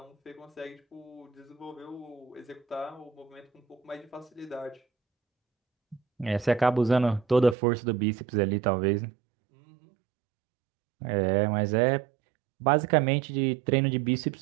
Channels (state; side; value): drops out; left; at 7.6 s